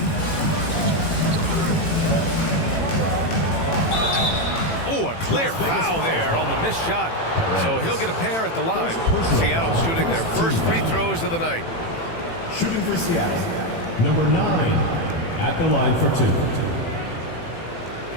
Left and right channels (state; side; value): late; right; 18 ms